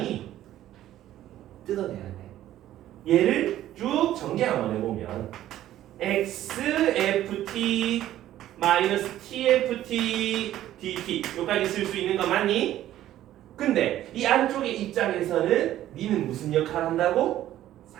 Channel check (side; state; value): left; quieter; 13.1 dB